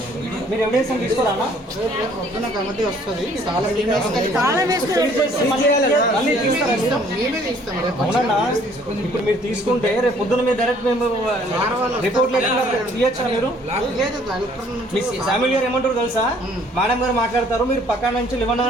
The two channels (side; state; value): both; normal; correlation 0.59